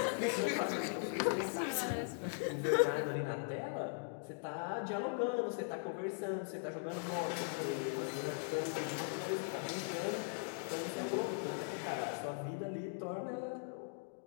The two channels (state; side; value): silent; right; digital silence